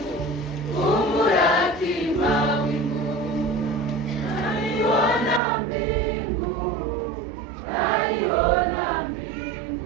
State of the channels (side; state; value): left; drops out; at 5.4 s